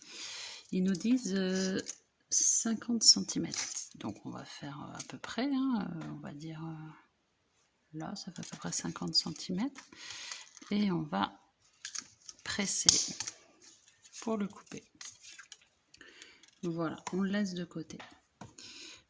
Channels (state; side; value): identical; both; correlation 1.00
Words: Ils nous disent 50 cm. Donc on va faire à peu près, on va dire là, ça fait à peu près 50 cm. Et on va presser pour le couper. Voilà, on le laisse de côté.